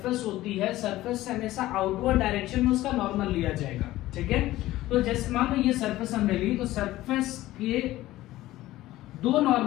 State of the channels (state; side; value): quieter; right; 16.1 dB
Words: होती है सरफेस से हमेशा आउटवर्ड डायरेक्शन में उसका नॉर्मल लिया जाएगा, ठीक है। तो जैसे मान लो ये सरफेस हमने ली तो सरफेस के दो